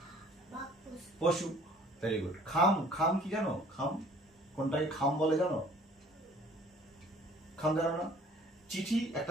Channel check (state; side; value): normal; both; correlation 0.54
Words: বাঘ পশু। Very good. খাম, খাম কি জানো? খাম কোনটাকে খাম বলে জানো? খাম জানো না? চিঠি